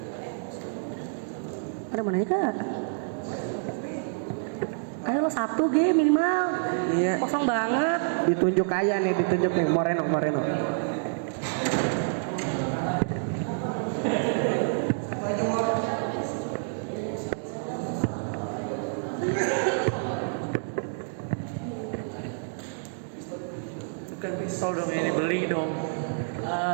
Ada mana ya kak? Ayo lo 1 G minimal. Iya. Kosong banget. Ditunjuk nih Moreno. Bukan pistol dong ini, beli dong.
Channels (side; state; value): left; silent; digital silence